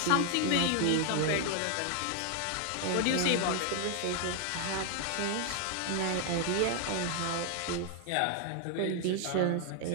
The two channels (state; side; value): different; both; correlation 0.00